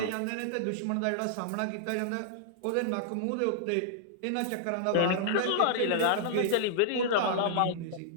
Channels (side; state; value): both; different; correlation -0.01